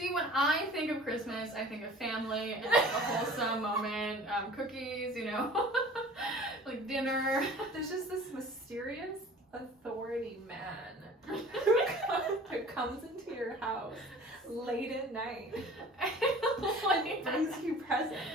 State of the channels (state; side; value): normal; both; correlation 0.44